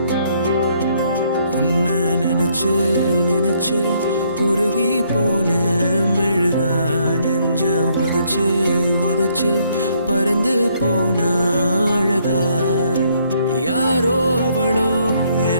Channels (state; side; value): inverted; both; correlation -0.69